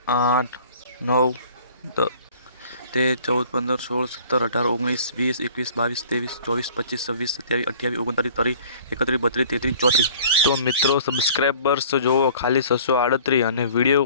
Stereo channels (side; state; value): both; inverted; correlation -0.50